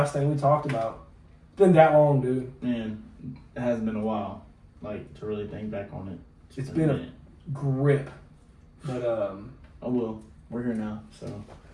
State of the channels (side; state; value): both; identical; correlation 1.00